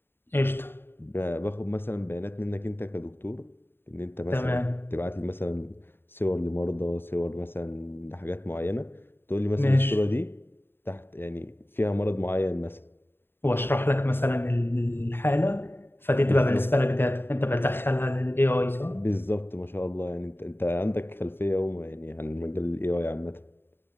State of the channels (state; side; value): late; right; 0.11 ms